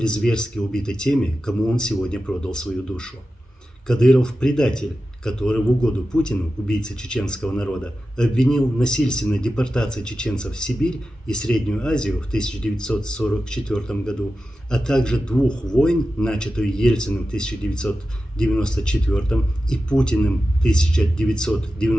зверски убиты теми, кому он сегодня продал свою душу. Кадыров – предатель, который в угоду Путину, убийце чеченского народа, обвинил в насильственной депортации чеченцев в Сибирь и Среднюю Азию в 1944 году, а также двух войн, начатую Ельциным в 1994 и Путиным в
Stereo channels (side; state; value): both; normal; correlation 0.93